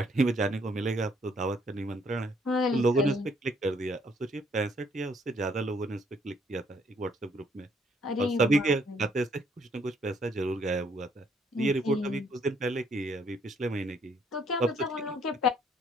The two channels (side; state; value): both; normal; correlation 0.67